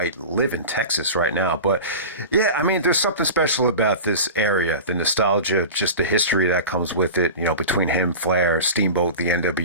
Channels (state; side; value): inverted; both; correlation -0.31